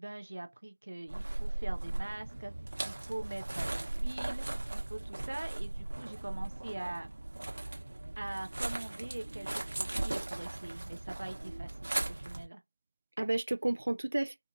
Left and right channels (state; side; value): inverted; both; correlation -1.00